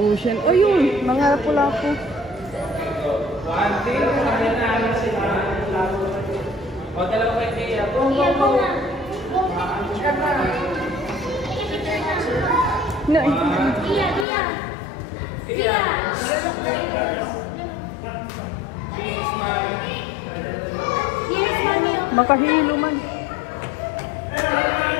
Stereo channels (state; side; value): drops out; right; at 14.2 s